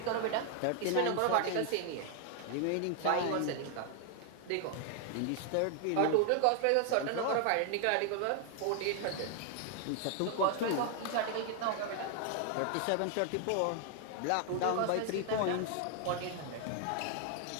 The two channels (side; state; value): both; different; correlation 0.00